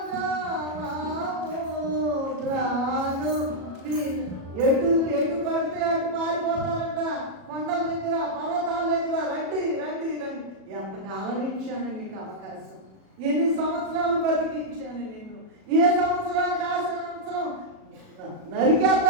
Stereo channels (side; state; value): left; late; 37 ms